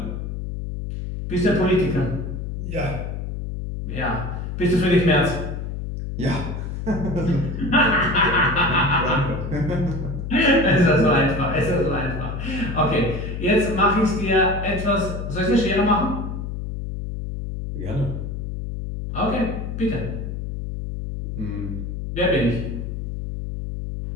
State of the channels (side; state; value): left; noise; hum, 5 dB below the sound